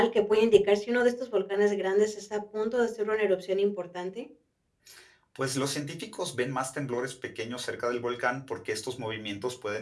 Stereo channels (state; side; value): identical; both; correlation 1.00